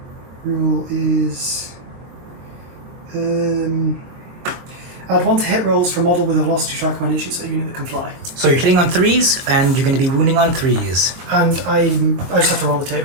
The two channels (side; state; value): left; late; 23 ms